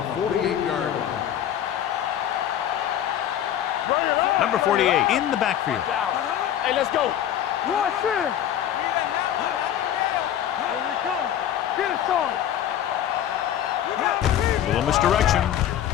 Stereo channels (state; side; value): quieter; right; 10.8 dB